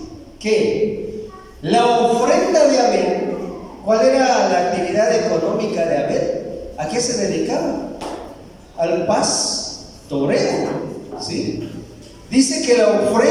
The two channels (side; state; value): both; identical; correlation 1.00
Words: que la ofrenda de Abel, ¿cuál era la actividad económica de Abel? ¿A qué se dedicaba? Al pastoreo, ¿sí? Dice que la